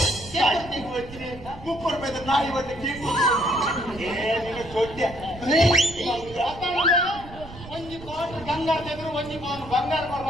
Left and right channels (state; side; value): noise; right; rumble, 15 dB below the sound